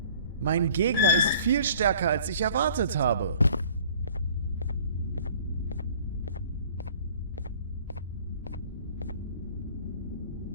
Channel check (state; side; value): inverted; both; correlation -0.51